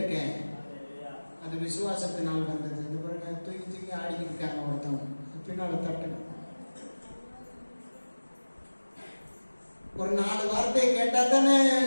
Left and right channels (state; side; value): inverted; both; correlation -1.00